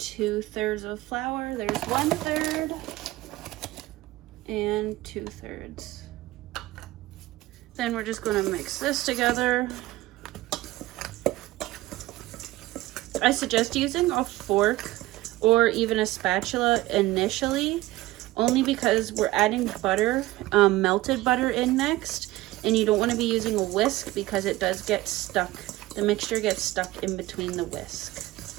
of flour. There's 1/3 and 2/3. Then we're just gonna mix this together. I suggest using a fork or even a spatula initially, only because we're adding butter, melted butter in next, and you don't want to be using a whisk because it does get stuck. The mixture gets stuck in between the whisk.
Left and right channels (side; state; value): left; quieter; 17.9 dB